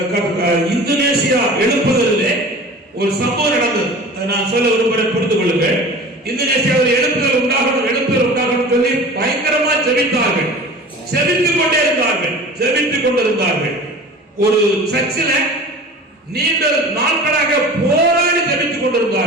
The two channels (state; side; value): normal; both; correlation 0.39